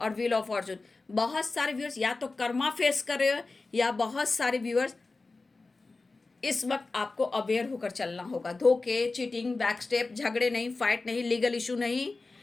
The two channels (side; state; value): right; quieter; 3.6 dB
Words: व्हील ऑफ फॉर्चून। बहुत सारे व्यूअर्स या तो कर्मा फेस कर रहे हो, या बहुत सारे व्यूअर्स इस वक्त आपको अवेयर होकर चलना होगा। धोखे, चीटिंग, बैक स्टेप, झगड़े नहीं, फाइट नहीं, लीगल इशू नहीं।